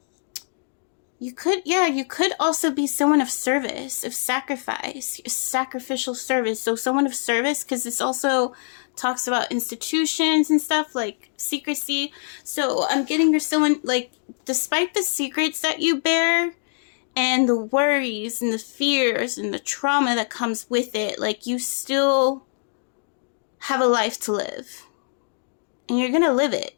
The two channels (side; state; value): right; silent; digital silence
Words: You could also be someone of service, of sacrifice, sacrificial service. So someone of service, because this also talks about institutions and stuff, like secrecy. So I'm getting you're someone, like, despite the secrets that you bear and the worries and the fears and the trauma that comes with it, like, you still have a life to live. And you're going to live it.